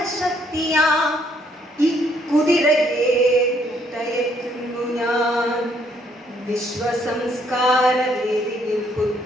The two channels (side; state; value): both; normal; correlation 0.68